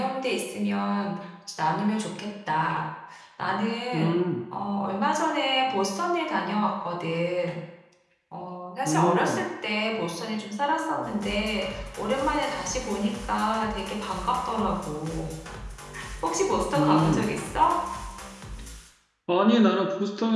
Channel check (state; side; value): identical; both; correlation 1.00